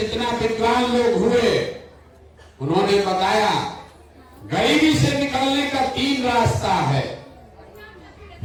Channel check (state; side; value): identical; both; correlation 1.00